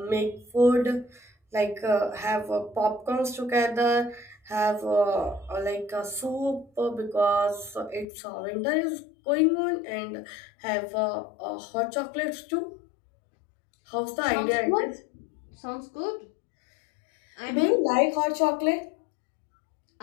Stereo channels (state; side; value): drops out; right; at 8.1 s